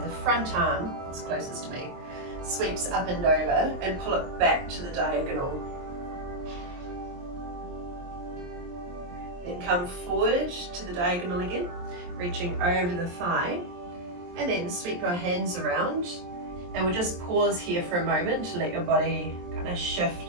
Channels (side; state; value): left; late; 23 ms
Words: The front arm, it's closest to me, sweeps up and over and pull it back to the diagonal. Then come forward to the diagonal again, reaching over the thigh, and then sweep your hands around. And we'll just pause here for a moment to let your body kind of